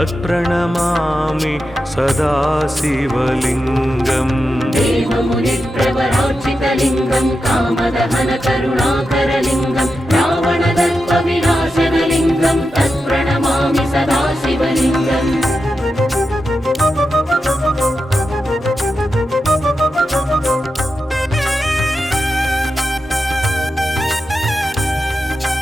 सदा शिवलिङ्गम् देवमुनिप्रवरार्चितलिङ्गं कामदहनकरुणाकरलिङ्गं रावणदर्पविनाशनलिङ्गं तत्प्रणमामि सदा शिवलिङ्गम्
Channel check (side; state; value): both; normal; correlation 0.89